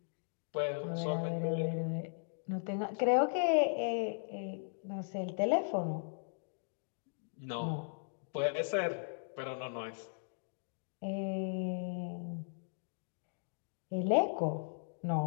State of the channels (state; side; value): silent; right; digital silence